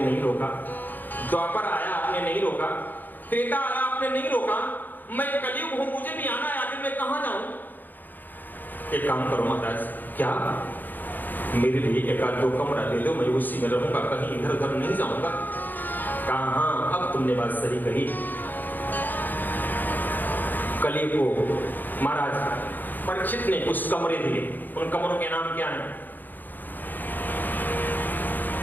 रोका, द्वापर आया आपने नहीं रोका, त्रेता आया आपने नहीं रोका, मैं कलयुग हूं, मुझे भी आना है, आखिर मैं कहां जाऊं? एक काम करो महाराज, क्या मेरे लिए एक आध दो कमरा दे दो, मैं उसी में रहूंगा, कहीं इधर उधर नहीं जाऊंगा। कहा अब तुमने बात सही कही। कलयुग को महाराज परीक्षित ने कुछ कमरे दिए। उन कमरों के नाम क्या है?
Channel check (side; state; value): right; late; 0.087 ms